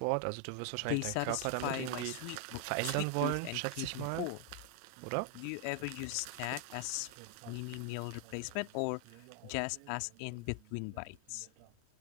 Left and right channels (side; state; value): both; different; correlation 0.00